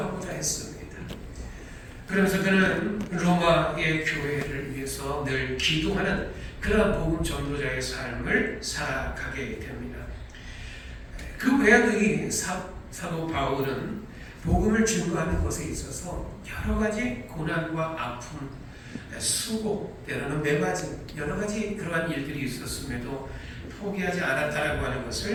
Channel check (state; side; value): identical; both; correlation 1.00